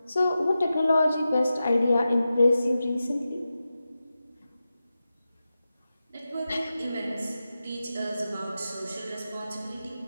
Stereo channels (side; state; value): both; inverted; correlation -0.92